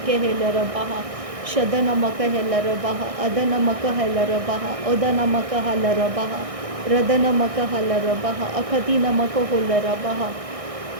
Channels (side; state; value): left; late; 1.6 ms